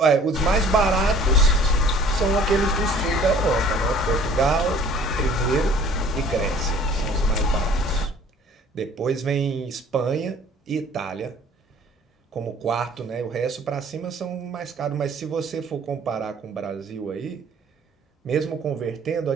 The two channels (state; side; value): normal; both; correlation 0.52